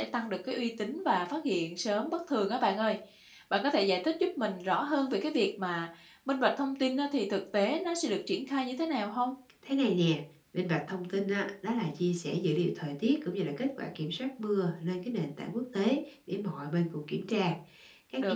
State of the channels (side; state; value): both; identical; correlation 1.00